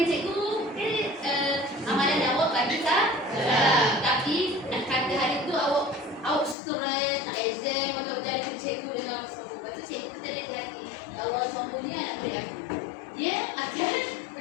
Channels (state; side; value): drops out; right; at 6.6 s